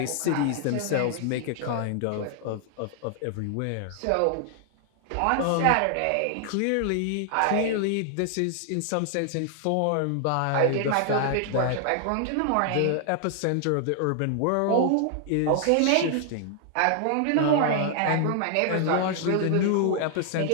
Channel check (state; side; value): different; both; correlation 0.00